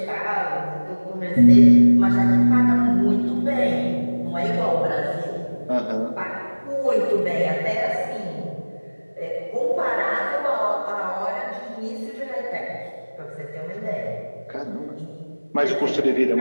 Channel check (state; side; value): inverted; both; correlation -1.00